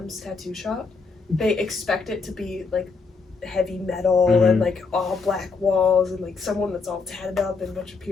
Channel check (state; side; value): quieter; right; 4.5 dB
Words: tattoo shop, they expect it to be like heavy metal and like all black walls and like someone that's all tatted up and a bunch of